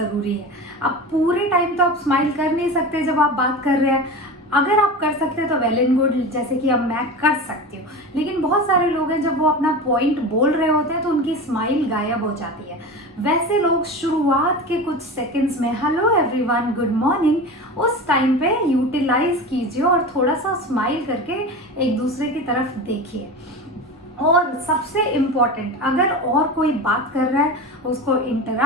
है। अब पूरे टाइम तो आप स्माइल कर नहीं सकते जब आप बात कर रहे हैं। अगर आप कर सकते हैं तो वेल एंड गुड, जैसे कि अब मैं कर सकती हूँ, लेकिन बहुत सारे लोग हैं जब वो अपना पॉइंट बोल रहे होते हैं तो उनकी स्माइल गायब हो जाती है। वैसे लोग शुरुआत के कुछ सेकंड्स में हेलो एवरीवन, गुड मॉर्निंग, उस टाइम पे यूटिलाइज कीजिए और थोड़ा सा स्माइल करके एक दूसरे की तरफ देखिए। और सबसे इम्पॉर्टेंट, अगर और कोई बात कर रहा है उसको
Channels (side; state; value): both; normal; correlation 0.29